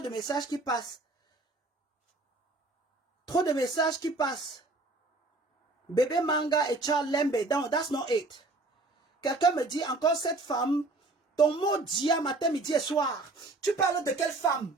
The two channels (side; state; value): left; quieter; 3.1 dB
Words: messages qui passent. Trop de messages qui passent. Bébé Manga et Charles Lembe. Non, that's not it. Quelqu'un me dit encore cette femme, ton mot dit à matin, midi et soir. Tu parles de quelle femme?